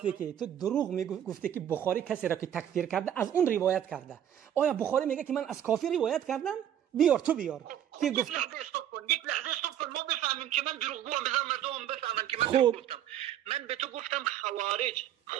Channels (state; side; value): quieter; left; 10.4 dB